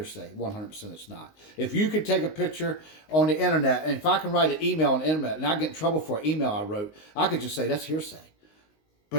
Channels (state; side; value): late; right; 19 ms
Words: 100% it's not. If you could take a picture on the internet, and if I can write an email on the internet and I get in trouble for an email I wrote, I could just say that's hearsay.